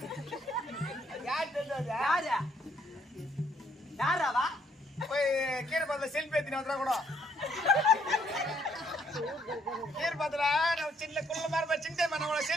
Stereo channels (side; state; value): both; normal; correlation 0.69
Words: யார் தெரிஞ்சது யாராவா போய் கீரை பாத்துல செல்ஃபி எடுத்து வந்துடா கூட கீரை பாத்துல நான் சின்ன குள்ள மாதிரி சின்ன நான்